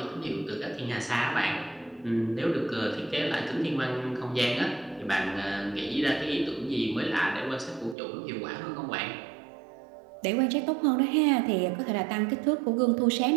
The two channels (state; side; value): drops out; left; at 8.0 s